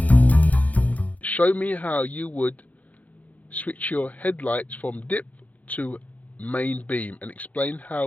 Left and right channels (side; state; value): right; late; 0.075 ms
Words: Show me how you would switch your headlights from dip to main beam, and explain